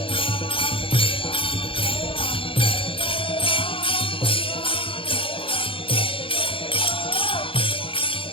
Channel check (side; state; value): right; late; 0.26 ms